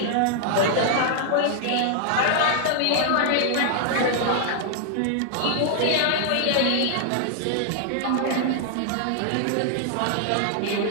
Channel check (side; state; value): both; different; correlation -0.01